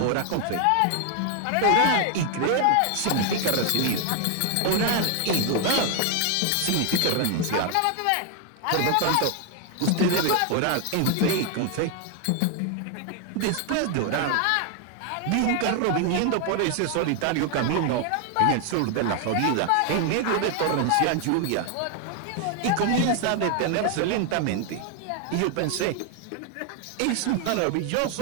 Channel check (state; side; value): different; both; correlation 0.01